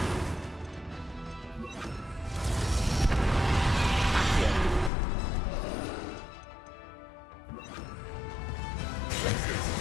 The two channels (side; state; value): right; drops out; at 4.9 s